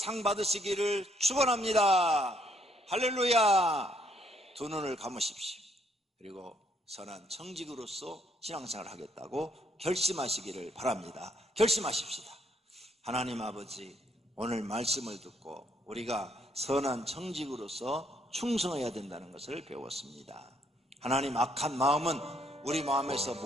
받으시기를 축원합니다. 할렐루야. 두 눈을 감으십시오. 그리고 선한 청지기로서 신앙생활을 하겠다고 결심하시기를 바랍니다. 결심하십시다. 하나님 아버지, 오늘 말씀을 듣고 우리가 선한 청지기로서 충성해야 된다는 것을 배웠습니다. 하나님, 악한 마음은 우리 마음에서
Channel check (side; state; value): both; normal; correlation 0.70